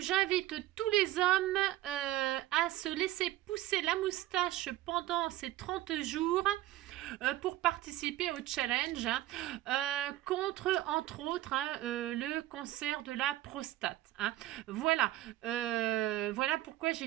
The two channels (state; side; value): quieter; left; 15.3 dB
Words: j'invite tous les hommes à se laisser pousser la moustache pendant ces 30 jours pour participer au challenge contre, entre autres, le cancer de la prostate. Voilà, voilà pourquoi